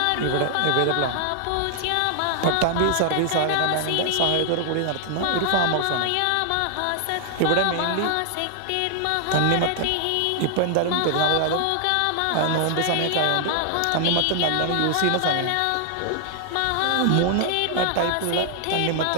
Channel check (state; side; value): different; both; correlation 0.00